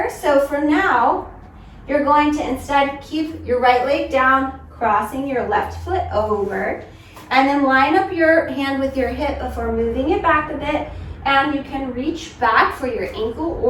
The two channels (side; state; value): both; identical; correlation 1.00